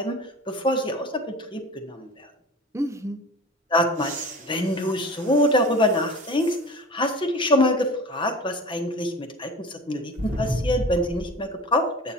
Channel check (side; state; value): both; normal; correlation 0.36